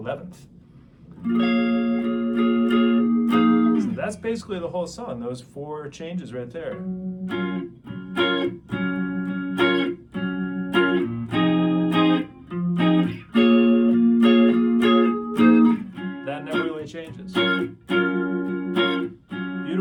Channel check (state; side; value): identical; both; correlation 1.00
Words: So that's basically the whole song, those 4 changes right there. That never really changes.